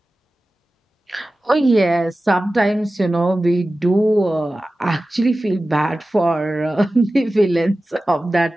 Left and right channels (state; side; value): normal; both; correlation 0.95